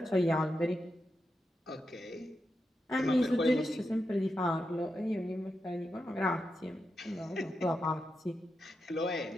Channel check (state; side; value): normal; both; correlation 0.87